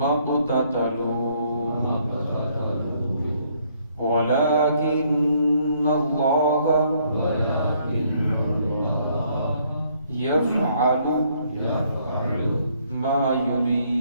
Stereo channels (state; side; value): inverted; both; correlation -0.68